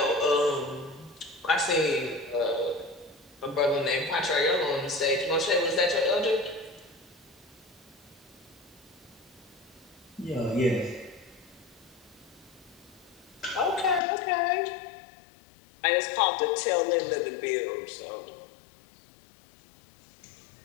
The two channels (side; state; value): right; drops out; at 14.0 s